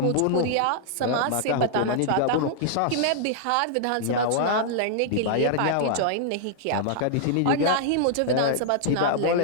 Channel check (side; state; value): both; different; correlation -0.01